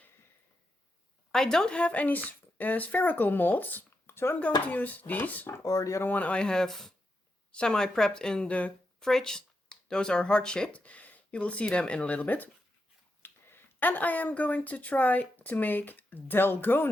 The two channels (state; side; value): normal; both; correlation 0.85